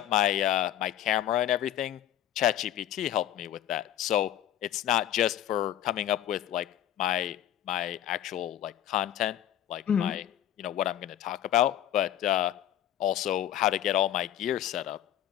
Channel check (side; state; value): right; quieter; 11.9 dB